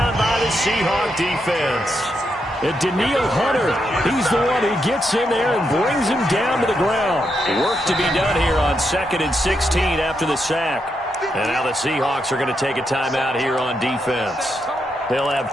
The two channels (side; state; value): both; normal; correlation 0.82